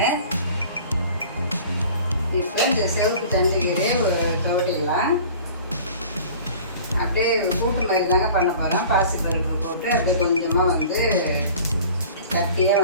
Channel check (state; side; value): inverted; both; correlation -0.45